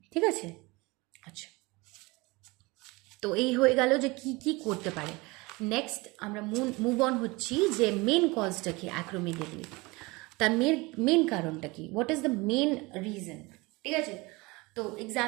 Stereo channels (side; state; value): left; quieter; 24.1 dB